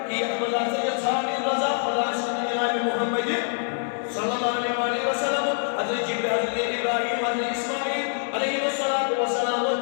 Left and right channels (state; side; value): silent; right; 62 dB below the other